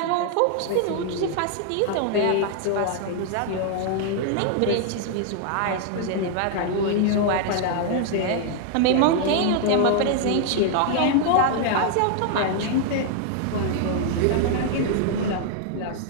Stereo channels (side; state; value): both; different; correlation 0.00